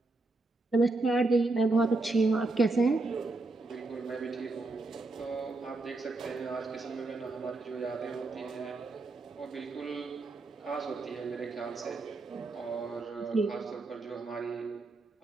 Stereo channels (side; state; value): left; quieter; 3.2 dB